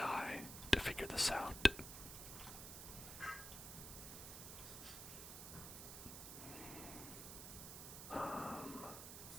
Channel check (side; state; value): right; noise; hiss, 8 dB below the sound